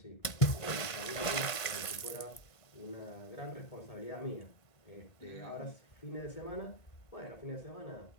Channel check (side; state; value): right; late; 1.5 ms